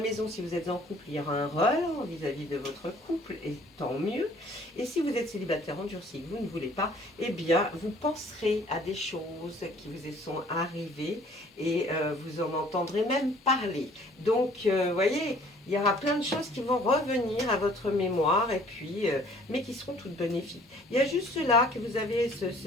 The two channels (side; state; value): both; normal; correlation 0.55